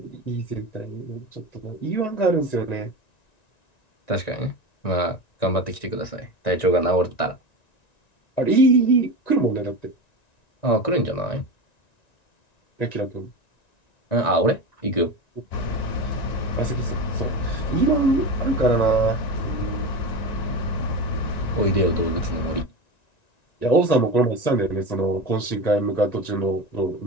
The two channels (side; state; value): right; late; 1.9 ms